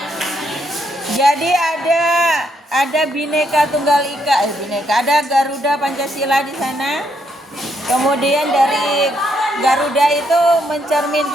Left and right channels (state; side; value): normal; both; correlation 0.75